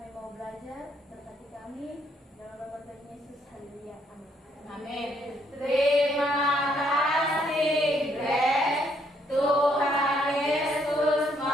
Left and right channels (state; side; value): normal; both; correlation 0.71